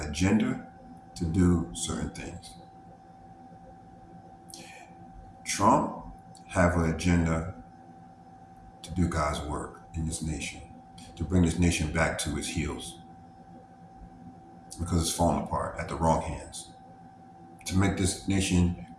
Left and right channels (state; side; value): identical; both; correlation 1.00